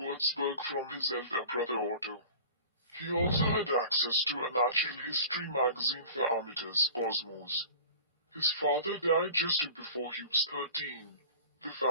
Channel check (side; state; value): both; inverted; correlation -0.41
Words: from his elder brother Otto. He also had access to a natural history magazine for amateurs, Cosmos. His father died just before he was 13. The